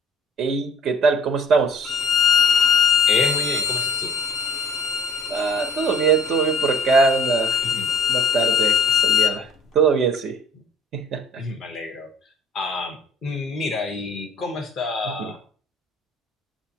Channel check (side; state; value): both; normal; correlation 0.50